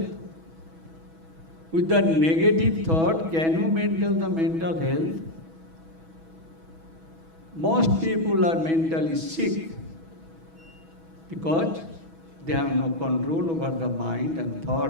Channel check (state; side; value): late; left; 6.2 ms